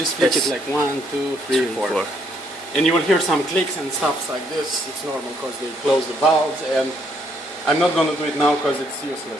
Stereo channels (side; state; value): both; normal; correlation 0.70